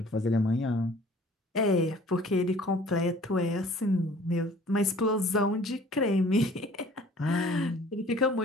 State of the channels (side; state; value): both; normal; correlation 0.51